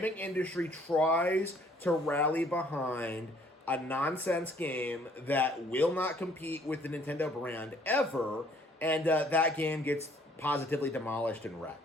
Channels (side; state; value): both; normal; correlation 0.60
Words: industry tries to rally behind a nonsense game that will not compete with the Nintendo brand ever, and that game gets positively demolished and wrecked.